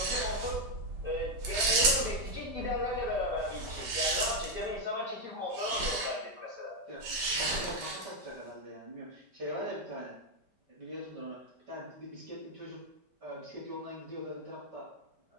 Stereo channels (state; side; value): late; left; 5.1 ms